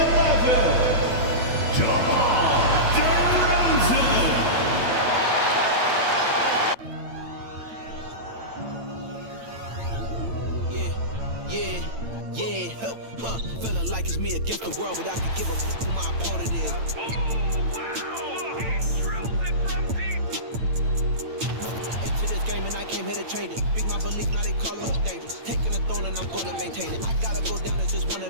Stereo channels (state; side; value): late; left; 8.9 ms